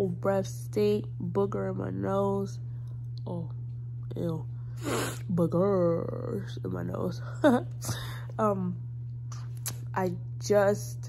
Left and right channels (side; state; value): both; identical; correlation 1.00